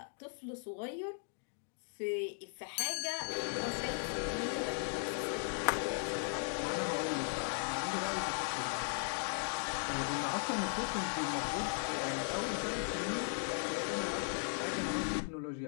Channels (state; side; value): silent; right; 53 dB below the other